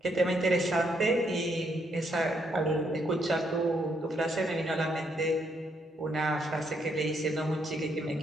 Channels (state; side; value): normal; both; correlation 0.74